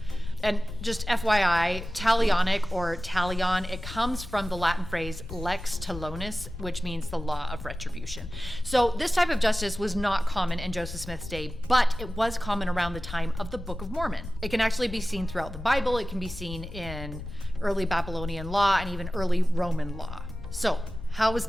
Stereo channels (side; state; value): left; noise; rumble, 10 dB below the sound